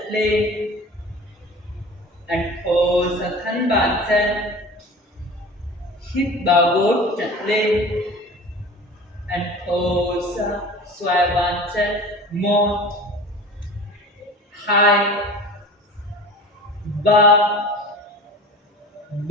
lên. Anh thổ xả thân bàn chân. Hít vào gối chân lên. Anh thổ xả xoay bàn chân. 1 2 3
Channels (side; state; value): both; normal; correlation 0.39